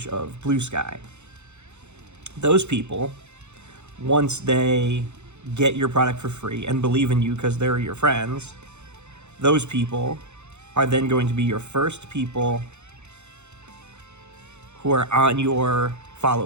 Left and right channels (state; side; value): late; left; 0.82 ms